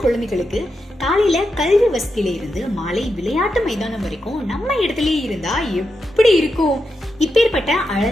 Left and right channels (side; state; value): both; normal; correlation 0.87